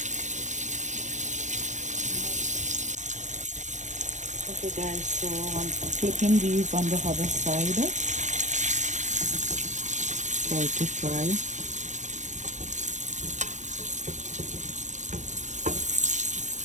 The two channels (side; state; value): left; late; 0.35 ms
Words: Okay guys, so I'm flipping these on the other side for it to fry.